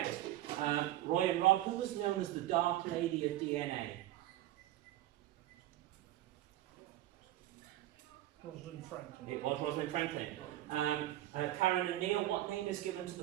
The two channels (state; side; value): quieter; left; 14.8 dB